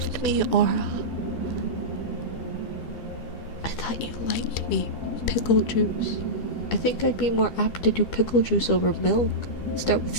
me, Aura. I thought you liked me. Pickle juice. I think I'd be more apt to do pickle juice over milk. Start with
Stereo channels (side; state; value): right; late; 12 ms